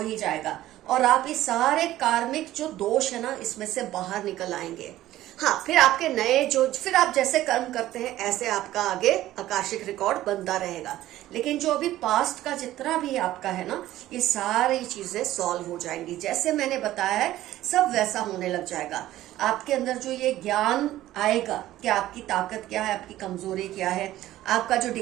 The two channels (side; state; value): left; quieter; 14.6 dB